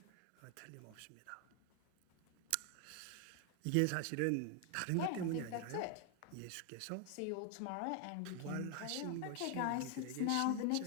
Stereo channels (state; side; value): different; both; correlation 0.00